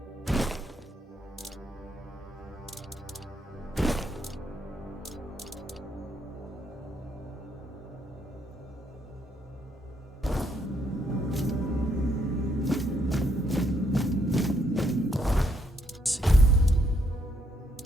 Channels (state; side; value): normal; both; correlation 0.73